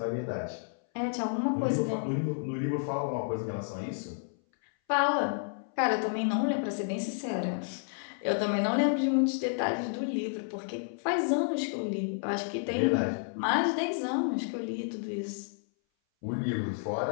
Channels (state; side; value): silent; right; 57 dB below the other